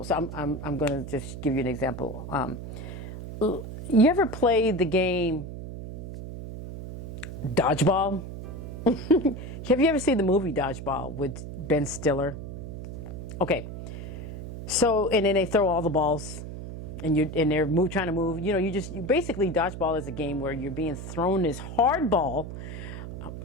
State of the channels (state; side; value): noise; right; hum, 9 dB below the sound